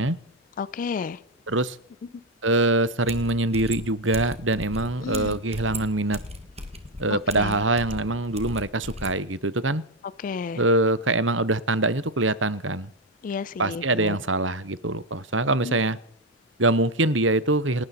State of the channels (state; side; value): normal; both; correlation 0.08